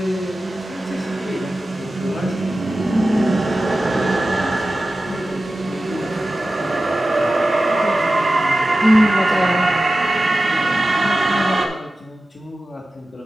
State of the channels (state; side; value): normal; both; correlation 0.95